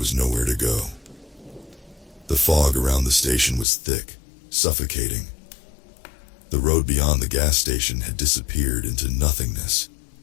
nowhere to go. The fog around the station was thick, suffocating. The road beyond the gas station had disappeared into nothingness,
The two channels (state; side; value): drops out; right; at 3.7 s